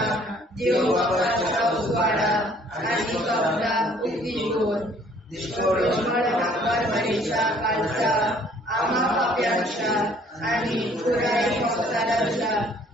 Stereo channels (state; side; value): normal; both; correlation 0.58